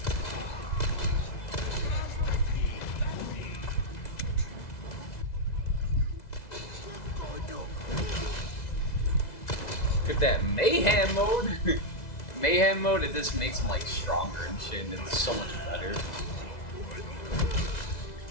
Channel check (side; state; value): right; late; 2.0 ms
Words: Look at that mayhem mode. Mayhem mode, it just makes them like stronger and shit, and it's so much better.